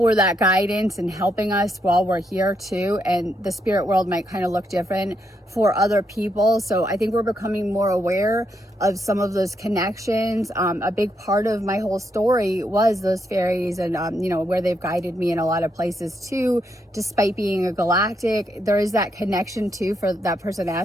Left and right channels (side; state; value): both; normal; correlation 0.79